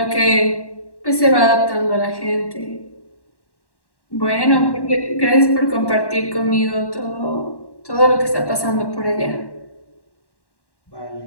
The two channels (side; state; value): right; late; 1.1 ms